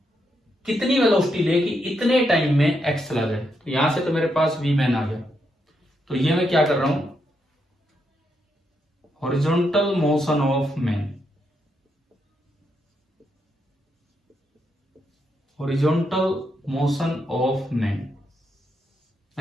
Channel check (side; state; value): both; normal; correlation 0.80